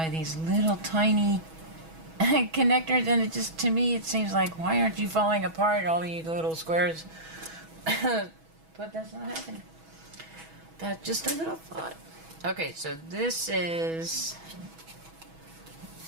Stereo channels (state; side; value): late; left; 6.2 ms